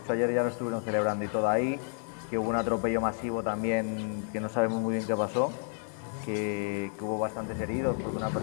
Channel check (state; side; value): silent; right; 57 dB below the other